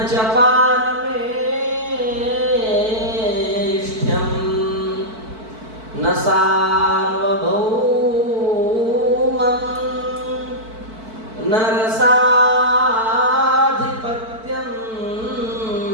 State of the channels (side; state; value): left; late; 4.5 ms